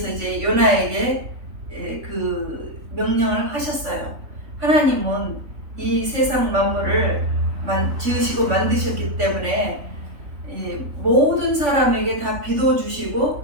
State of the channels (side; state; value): left; late; 3.5 ms